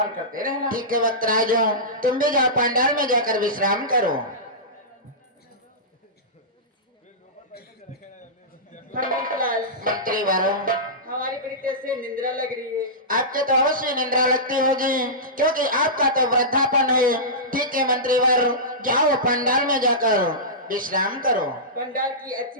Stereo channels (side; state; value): both; normal; correlation -0.17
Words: करते रहना। ठीक है पुत्रराज, तुम भी जाओ पंडाल में जाकर विश्राम करो। मंत्री वालों, हमारी बड़ी तेज से निंद्रा लग रही है। आपके तो अवश्य निंद्रा लगती होगी क्योंकि आपका तो वृद्धापन है। ठीक है मंत्री वर, जाओ पंडाल में जाकर विश्राम करो। पंडाल की अच्छी